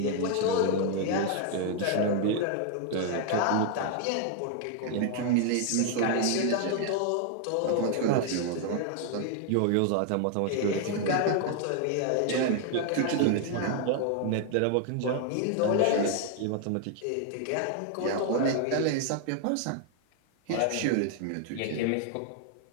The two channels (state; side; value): different; both; correlation 0.00